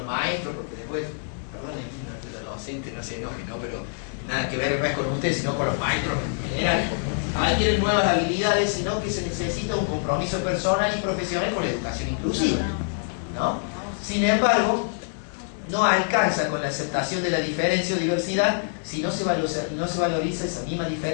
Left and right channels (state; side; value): silent; right; digital silence